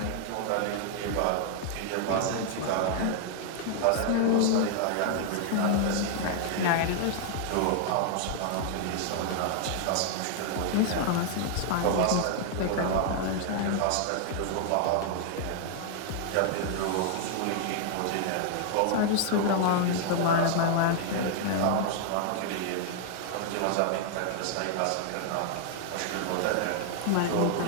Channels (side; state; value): both; different; correlation 0.00